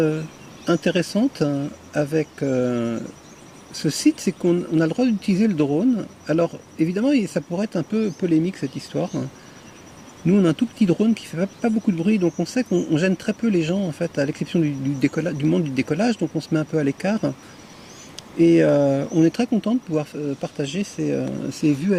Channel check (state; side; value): identical; both; correlation 1.00